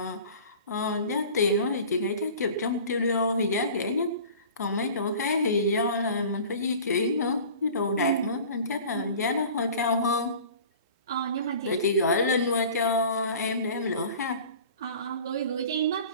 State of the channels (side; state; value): both; inverted; correlation -0.42